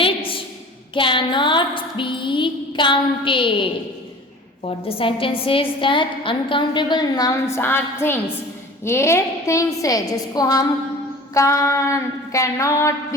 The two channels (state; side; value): normal; both; correlation 0.42